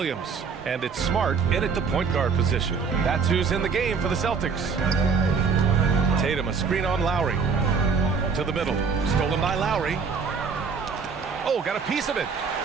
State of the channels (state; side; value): quieter; left; 5.4 dB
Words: And it's Smart in at the point guard position. That's who's in the game for the Celtics. Tatum, a screen on Lowry. To the middle. Stolen by Lowry. Oh, got a piece of it.